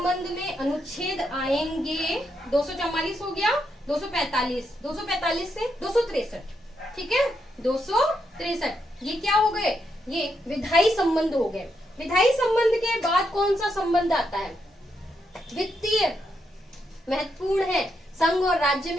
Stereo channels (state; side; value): normal; both; correlation 0.81